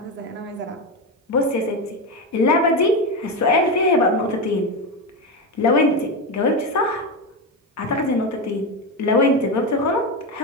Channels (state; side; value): normal; both; correlation 0.15